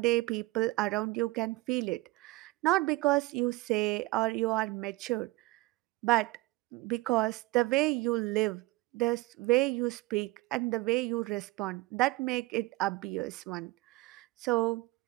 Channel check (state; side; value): quieter; left; 20.5 dB